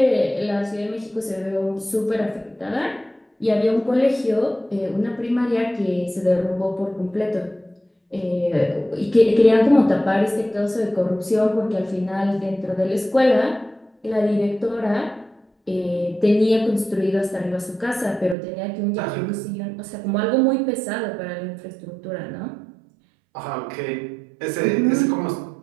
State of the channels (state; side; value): drops out; left; at 18.4 s